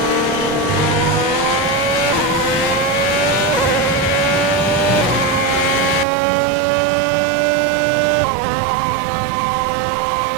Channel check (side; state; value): left; drops out; at 6.1 s